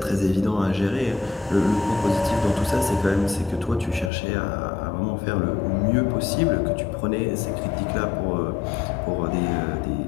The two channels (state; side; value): drops out; right; at 4.1 s